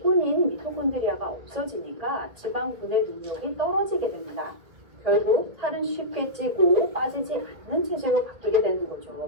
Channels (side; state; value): left; late; 1.8 ms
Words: 미토콘드리아가 없어지니까 지방 분해 능력이 떨어지게 됩니다. 결국 살은 쉽게 찌고 빠지지 않는 체질로 바뀌게 되는